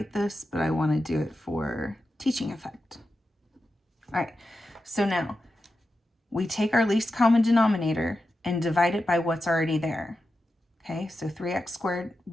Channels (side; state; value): both; normal; correlation 0.90